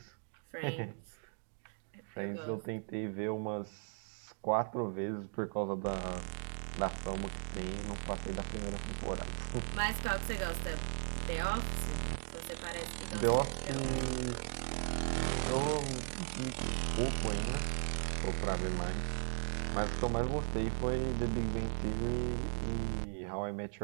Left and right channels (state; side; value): silent; left; 53 dB below the other